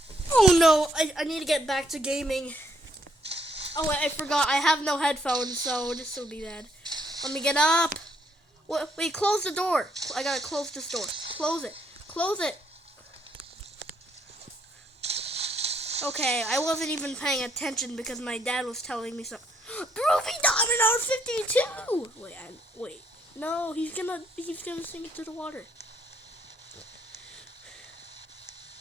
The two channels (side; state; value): both; normal; correlation 0.70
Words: Oh no, I need to get back to gaming. Oh wait, I forgot. I have no headphones, so this will be bad. Let me get up. Wait, close the door. I gotta close this door. Close it. Close it. Okay, I wasn't even paying attention because my dad was telling me something. Groovy Diamond on 52! Wait. No, he's gonna sink it to the water.